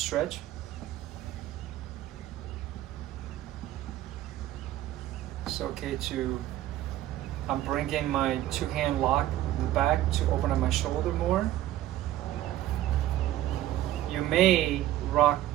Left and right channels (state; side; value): quieter; left; 13.9 dB